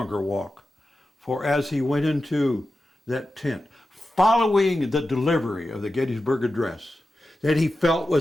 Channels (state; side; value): normal; both; correlation 0.92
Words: walk. For as he went into that tent, following the delivery of the Gettysburg Address, that he felt